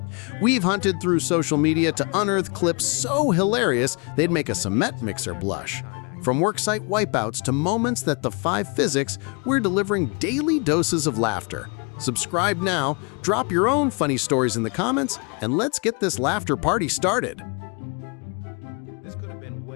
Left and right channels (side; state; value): right; quieter; 34.1 dB